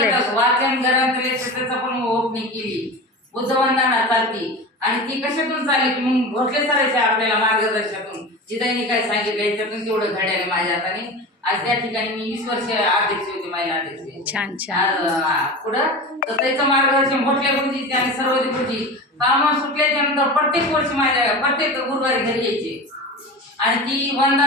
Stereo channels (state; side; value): normal; both; correlation 0.29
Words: वाचन ग्रंथालय त्याचा पण ओपनिंग केली. बुद्धवंदना चालती आणि ती कशातून चालली की मग भोसले सरायच्या आपल्याला मार्गदर्शनातून जिथं काय सांगितलं याच्यातून तेवढं घड्याने माझ्या हाताने. आज त्या ठिकाणी मी 20 वर्ष अध्यक्ष होते, महिला अध्यक्ष. छान छान. पुढं तर त्याचं मार्गदर्शन भोसले गुरुजी आणि सर्वोदय गुरुजी काम सुटल्याच्या नंतर प्रत्येक वर्षी माझ्या प्रत्येक गुरुवारी घरी यायचे आणि ती